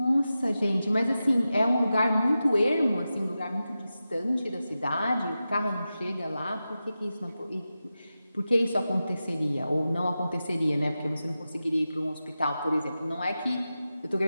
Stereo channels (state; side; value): inverted; both; correlation -0.92